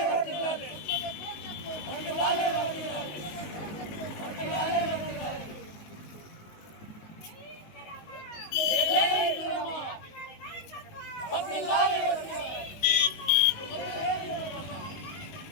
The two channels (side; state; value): right; late; 19 ms